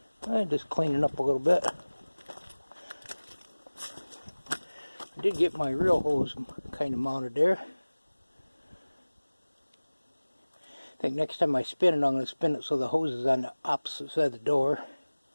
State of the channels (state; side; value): inverted; both; correlation -1.00